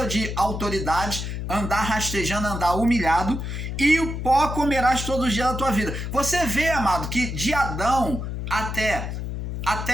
de autoridade, andar rastejando, andar humilhado, e o pó comerás todos os dias da tua vida. Você vê, amado, que de Adão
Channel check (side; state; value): left; noise; hum, 5 dB below the sound